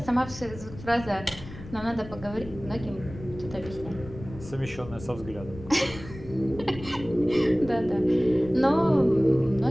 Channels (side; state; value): left; noise; rumble, 14 dB below the sound